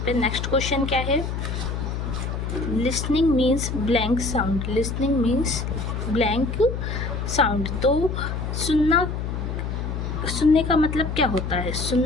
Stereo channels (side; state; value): left; noise; hum, 4 dB below the sound